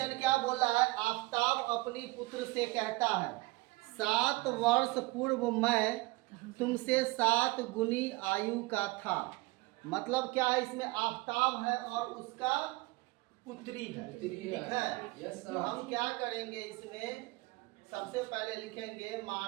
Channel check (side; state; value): left; quieter; 22.5 dB